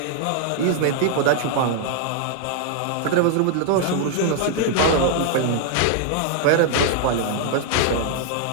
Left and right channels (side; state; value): both; different; correlation -0.01